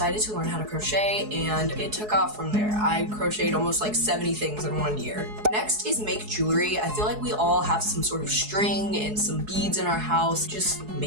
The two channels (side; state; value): left; late; 4.7 ms